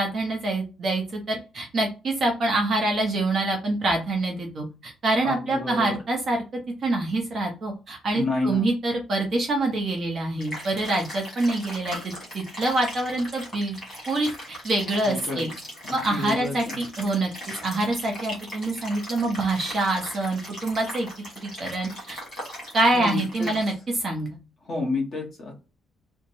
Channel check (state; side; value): normal; both; correlation 0.76